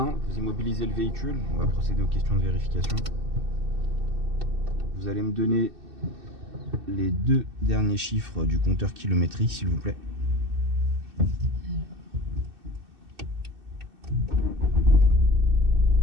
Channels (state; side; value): late; left; 2.6 ms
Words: vous immobilisez le véhicule. On va procéder aux questions de vérification. Vous allez me donner les 2 derniers chiffres du compteur kilométrique, s'il vous plaît.